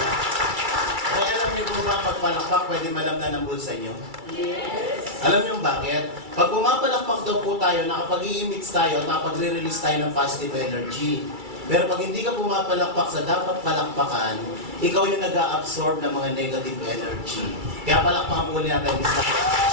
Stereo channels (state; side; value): late; left; 2.3 ms